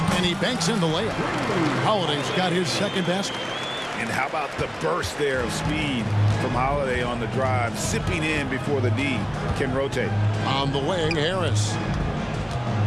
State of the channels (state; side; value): identical; both; correlation 1.00